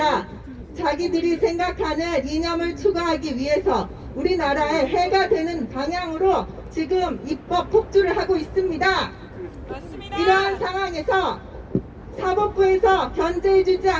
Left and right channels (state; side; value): identical; both; correlation 1.00